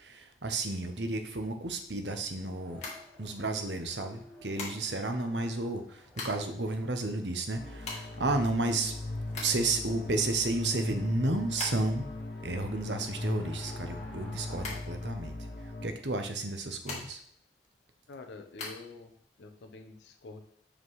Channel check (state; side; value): normal; both; correlation 0.52